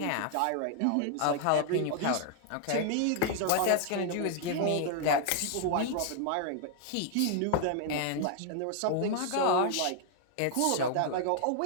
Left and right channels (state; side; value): different; both; correlation 0.00